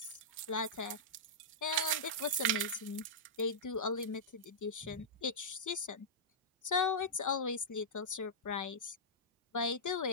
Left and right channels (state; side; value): normal; both; correlation -0.12